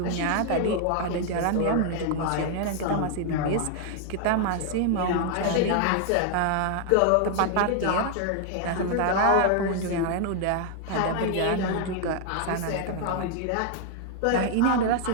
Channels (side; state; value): both; different; correlation 0.00